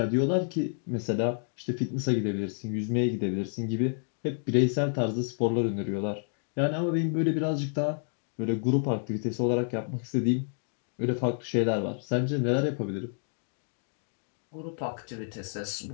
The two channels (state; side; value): silent; right; digital silence